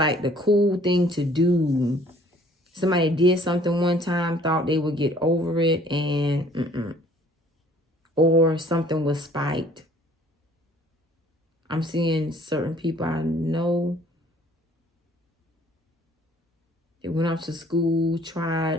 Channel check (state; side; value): normal; both; correlation 0.56